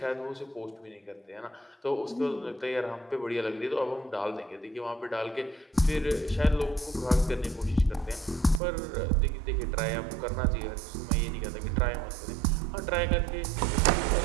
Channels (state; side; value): drops out; left; at 8.6 s